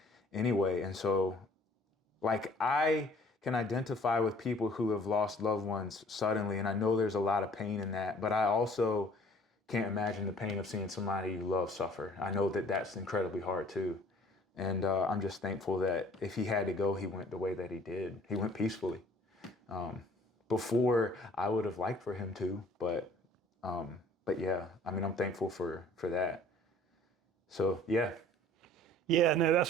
anyway. And so, like, I can identify with people who have lost loved ones suddenly, and I know there's a lot of pain in that, but I also can't imagine the pain of seeing somebody you love suffer. I know that that's incredibly hard too. And I'm just thankful that if he had to go, he went the way that he did. He went peacefully. Before, I would have liked for him to, but yeah, I'm thankful for that. So yeah. Yeah, no,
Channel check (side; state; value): both; normal; correlation 0.54